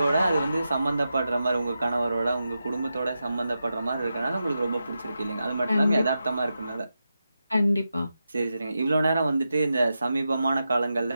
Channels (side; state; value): both; inverted; correlation -0.89